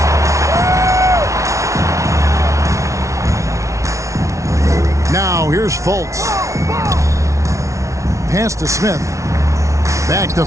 Now here's Fultz. Pass to Smith. Back to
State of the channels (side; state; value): left; late; 0.14 ms